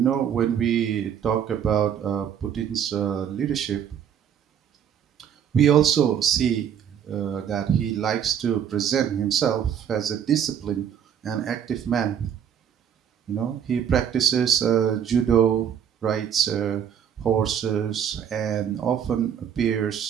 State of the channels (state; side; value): quieter; left; 8.7 dB